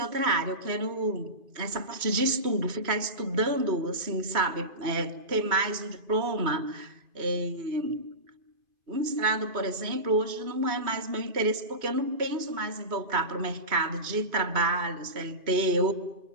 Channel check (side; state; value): left; late; 2.5 ms